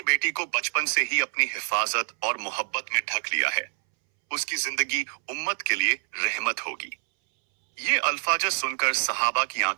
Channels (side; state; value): left; silent; 61 dB below the other